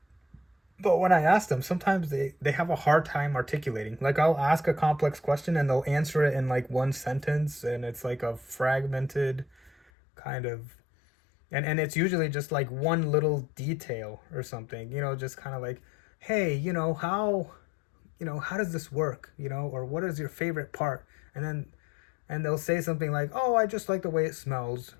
But when I ask them, sometimes they have a hard time articulating. Like, I'll ask a complex question and they'll answer it in like one sentence, and it's like a fragmented kind of, and it's usually just like one little detail or something, just kind of like, hey, how does this work, or what is your favorite part? And they'll say something like, oh, I just like the way it smells,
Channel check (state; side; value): drops out; right; at 9.8 s